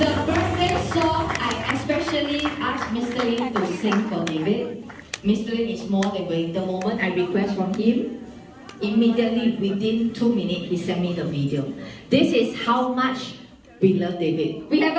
birthday song I especially Mr. Lin to sing for David. Mr. Lin is more than waiting. The moment I request from him, immediately within 2 minutes, he sent me the video. This is how much we love David. We have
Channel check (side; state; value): both; identical; correlation 1.00